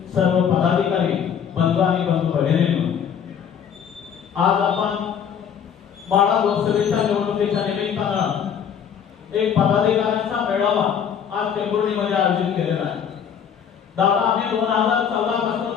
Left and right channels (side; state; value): right; quieter; 7.9 dB